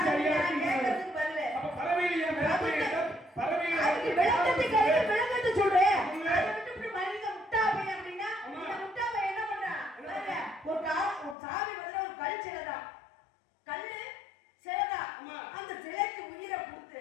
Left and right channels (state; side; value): drops out; right; at 11.4 s